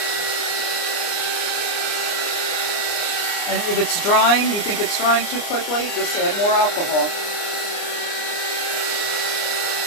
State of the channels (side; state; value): right; late; 29 ms